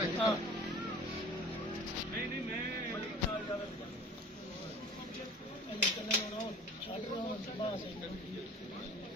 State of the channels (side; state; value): both; normal; correlation 0.44